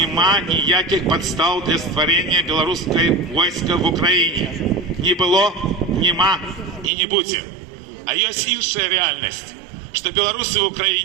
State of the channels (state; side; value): drops out; left; at 6.9 s